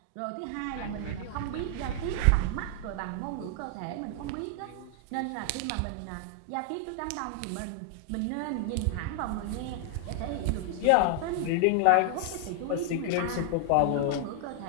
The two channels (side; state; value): both; different; correlation 0.00